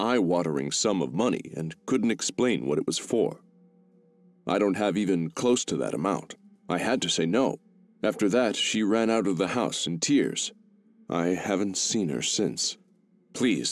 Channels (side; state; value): both; identical; correlation 1.00